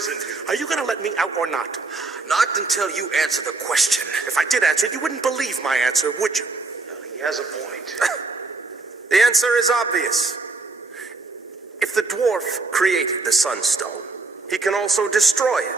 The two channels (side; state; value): left; quieter; 3.7 dB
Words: you? Are you going to let me out or not? Not until you answer the question. If I did answer it, you wouldn't believe my answer, would you? He has a point. The answer is obvious. If the dwarf created the sunstone, he can also destroy